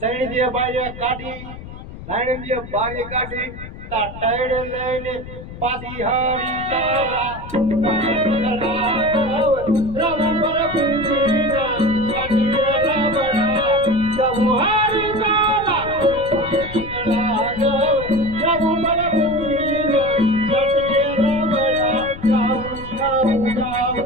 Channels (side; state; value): left; noise; rumble, 13 dB below the sound